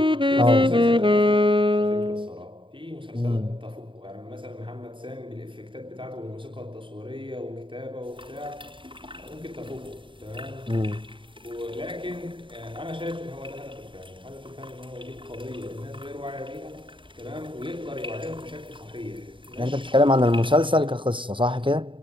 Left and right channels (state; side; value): late; left; 0.24 ms